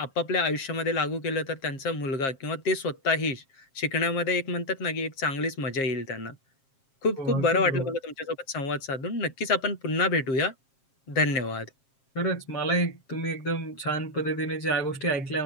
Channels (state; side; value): late; right; 7.4 ms